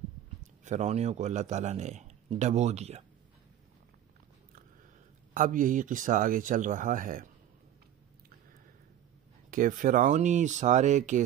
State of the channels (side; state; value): left; quieter; 11.2 dB